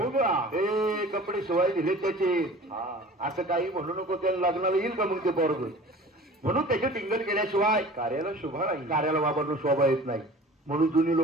हे कपडे शिवाय दिले त्याचे. असं काही म्हणू नको, त्याला लग्नाला येईल का मग ते पोरग? म्हणून त्याचे टिंगल केल्याशिवाय कार्याला शोभा नाही. कार्याला बाबांना शोभा येत नाही. म्हणून जुनी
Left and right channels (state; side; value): normal; both; correlation 0.43